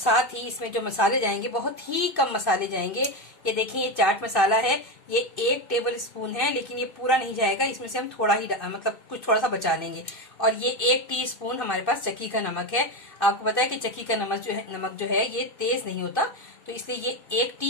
ही इसमें जो मसाले जाएंगे बहुत ही कम मसाले जाएंगे। ये देखिए, ये चाट मसाला है, ये 1 टेबल स्पून है, लेकिन ये पूरा नहीं जाएगा, इसमें से हम थोड़ा ही मतलब कुछ थोड़ा सा बचा लेंगे। और ये 1 टीस्पून हमारे पास चक्की का नमक है। आपको पता है कि चक्की का नमक जो है ये तेज नहीं होता, तो इसलिए ये 1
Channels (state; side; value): late; right; 2.6 ms